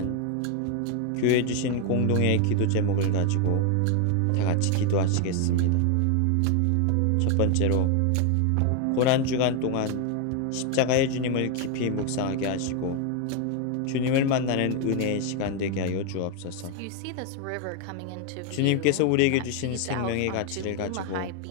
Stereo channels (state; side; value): different; both; correlation 0.01